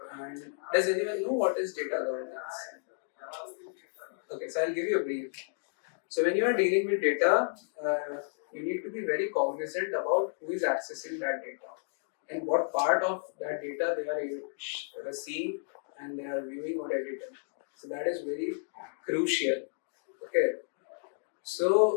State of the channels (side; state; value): right; silent; digital silence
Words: And does anyone know what is data governance? Okay, so I'll give you a brief. So when you are dealing with data, you need to be very cognizant about who is accessing that data and what part of that data they are seeing and they are viewing or editing. So that is very crucial. Okay.